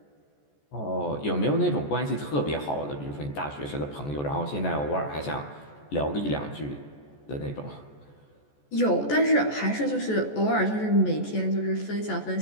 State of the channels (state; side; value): late; right; 14 ms